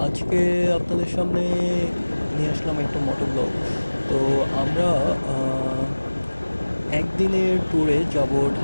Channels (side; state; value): both; inverted; correlation -1.00